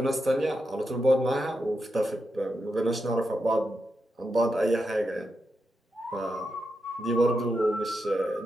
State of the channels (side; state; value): both; normal; correlation 0.86